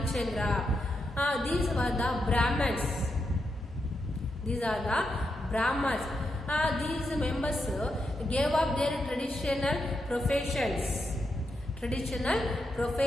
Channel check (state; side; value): normal; both; correlation 0.84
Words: These were the Brahmins. These are the Brahmins. These members gave up their traditional professions